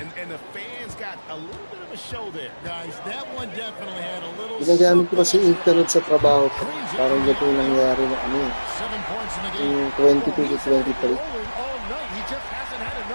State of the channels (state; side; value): inverted; both; correlation -1.00